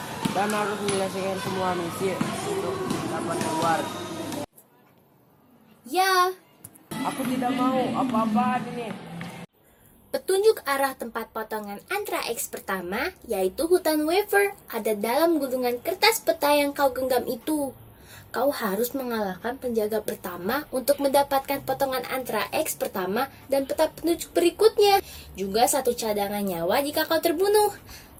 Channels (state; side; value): identical; both; correlation 1.00